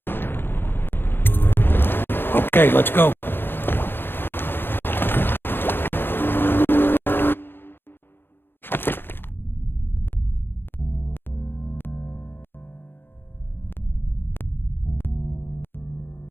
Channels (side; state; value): right; late; 0.10 ms